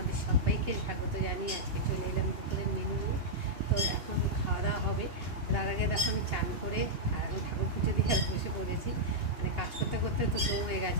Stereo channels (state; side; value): late; left; 2.8 ms